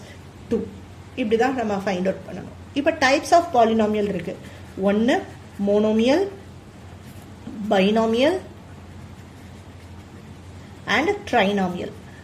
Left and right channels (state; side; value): identical; both; correlation 1.00